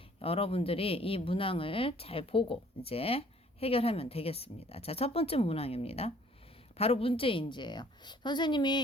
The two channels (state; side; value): normal; both; correlation 0.57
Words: 여러분들이 이 문항을 잘 보고 이제 해결하면 되겠습니다. 자, 첫 번째 문항입니다. 바로 문제인지예요.